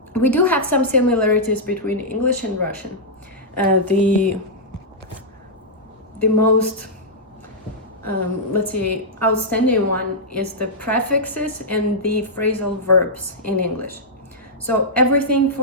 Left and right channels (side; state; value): both; normal; correlation -0.09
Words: we do have some similarities between English and Russian. The most let's say outstanding one is the prefixes and the phrasal verbs in English. So everything